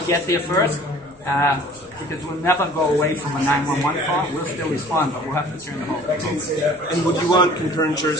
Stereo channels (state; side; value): noise; right; rumble, 28 dB below the sound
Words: get there first, because we'll never go away from a 911 call. We'll still respond, but we'll have to turn the whole thing. And would you want concurrent